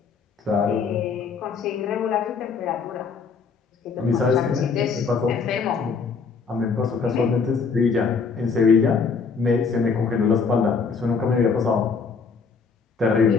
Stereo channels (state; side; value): quieter; right; 5.2 dB